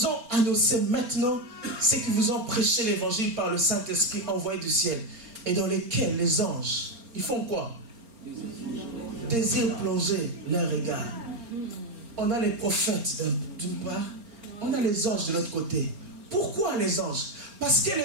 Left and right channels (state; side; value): late; left; 4.3 ms